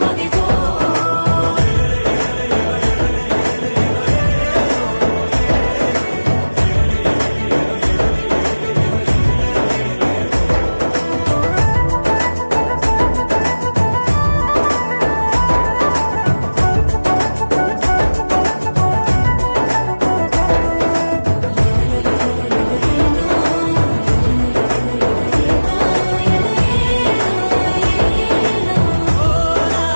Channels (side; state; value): both; inverted; correlation -1.00